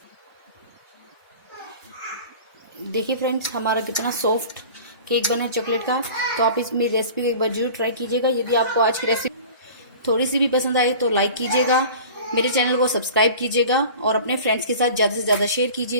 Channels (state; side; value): inverted; both; correlation -0.41